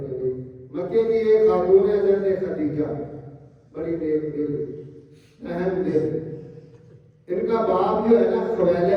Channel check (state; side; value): identical; both; correlation 1.00